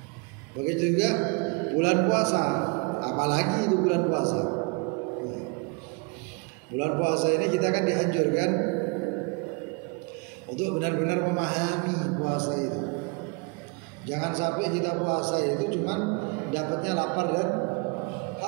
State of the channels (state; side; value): quieter; left; 31.3 dB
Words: Begitu juga bulan puasa, apalagi itu bulan puasa. Bulan puasa ini kita kan dianjurkan untuk benar-benar memahami puasa itu. Jangan sampai kita puasa itu cuman dapatnya lapar dan